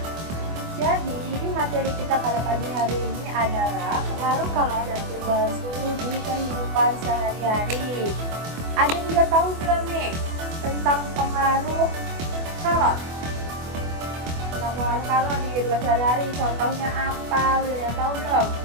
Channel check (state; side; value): late; left; 24 ms